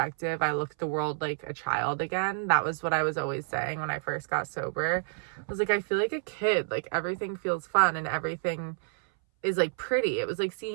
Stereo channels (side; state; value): left; silent; 58 dB below the other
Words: I look at the world like a child again. That was what I was always saying when I first got sober. I was like, I feel like a kid. Like, everything feels fun and everything is like pretty. It was like